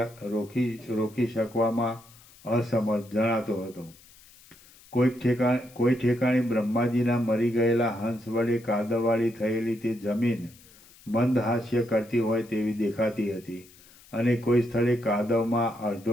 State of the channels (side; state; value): left; noise; hiss, 25 dB below the sound